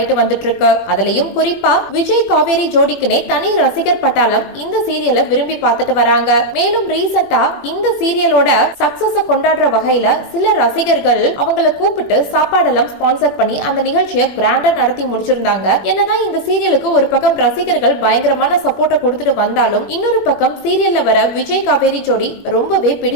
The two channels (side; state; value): right; late; 21 ms